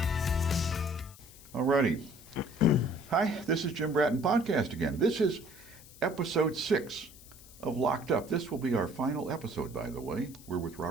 Alrighty. Hi, this is Jim Bratton Podcast again. This is episode 6 of Locked Up. This will be our final episode, by the way. We're with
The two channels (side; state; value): left; noise; hiss, 20 dB below the sound